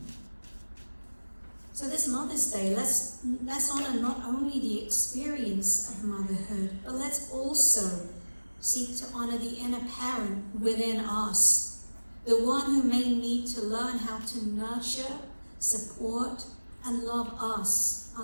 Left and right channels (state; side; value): inverted; both; correlation -1.00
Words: So this Mother's Day, let's honor not only the experience of motherhood, but let's also seek to honor the inner parent within us, the one who may need to learn how to nurture, support, and love us